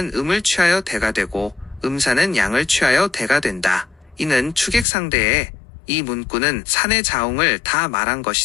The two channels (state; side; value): drops out; right; at 4.9 s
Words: 음을 취하여 대가 되고 음산은 양을 취하여 대가 된다. 이는 추객상대에 이 문구는 산의 자웅을 다 말한